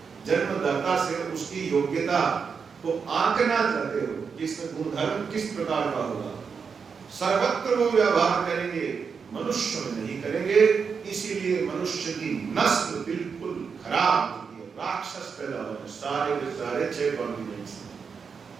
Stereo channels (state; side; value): quieter; left; 5.9 dB